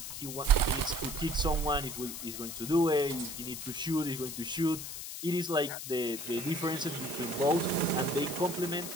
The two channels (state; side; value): noise; left; hiss, 8 dB below the sound